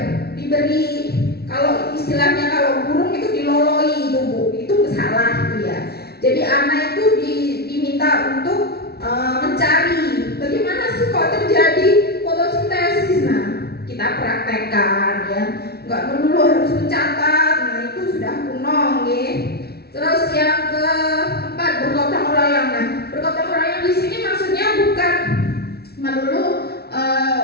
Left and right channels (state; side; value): late; right; 0.46 ms